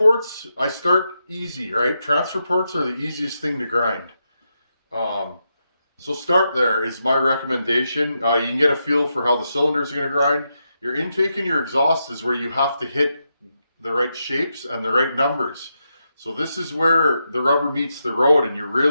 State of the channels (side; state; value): both; inverted; correlation -0.84